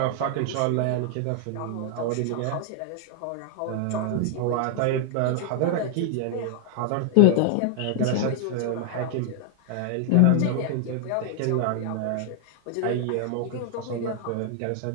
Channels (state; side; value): different; both; correlation 0.00